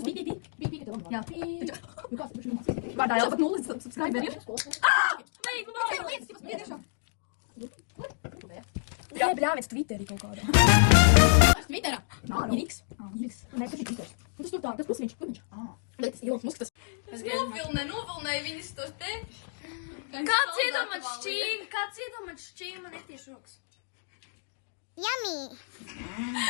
Pī, ka tev. Jā. Nu kāds, vārdā Elza pat nulles subscriberi. Jā, bļāmies Twitterī kaut kādā. Twitterā? Nā, X. Nē, tas ir Twitter. Tas tur tā, tas pusmiņš. Bet tas Ilons Musks tas. Es novilnēju viņus to te. Kāds iedomāt šķīm man ir tieši rokas? Yummy!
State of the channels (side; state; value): right; silent; digital silence